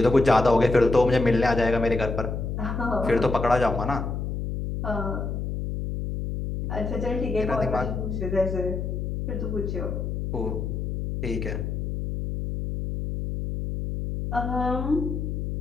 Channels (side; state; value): left; noise; hum, 3 dB below the sound